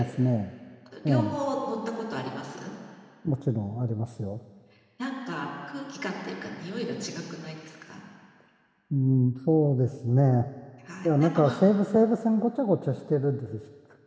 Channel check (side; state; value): both; identical; correlation 1.00